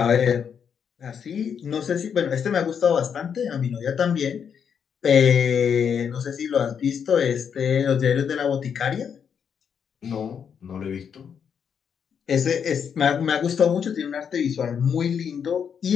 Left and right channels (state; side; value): quieter; right; 7.4 dB